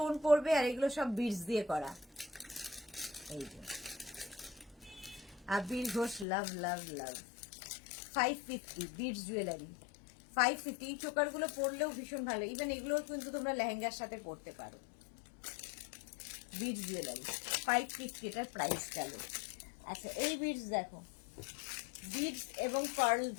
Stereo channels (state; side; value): drops out; right; at 6.2 s